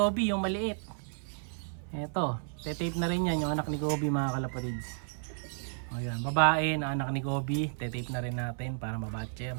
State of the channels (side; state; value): left; silent; 56 dB below the other